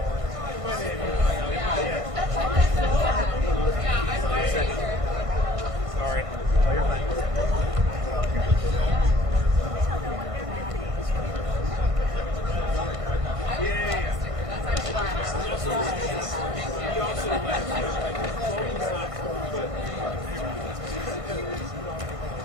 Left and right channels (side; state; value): left; late; 1.5 ms